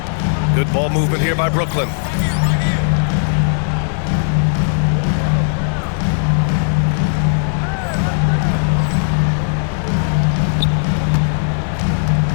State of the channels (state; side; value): silent; right; 66 dB below the other